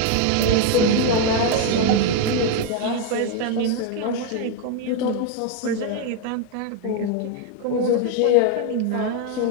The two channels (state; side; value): different; both; correlation 0.01